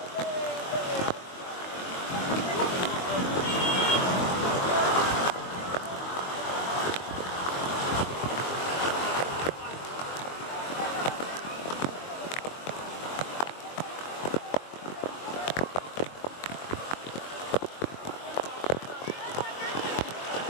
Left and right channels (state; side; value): late; right; 22 ms